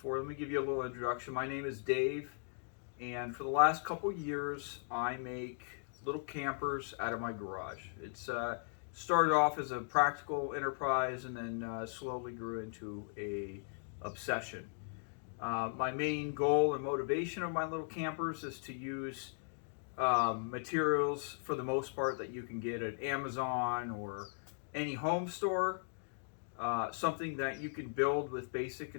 let me give you a little introduction. My name is Dave, and for the last couple years I make little campers out of my garage. It's started off as a practical enterprise and then slowly grew into a obsession. My main goal and motivation of my little campers is to use materials for the most part that you can get at Amazon or any home store. Something that you can build with basic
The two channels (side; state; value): right; silent; digital silence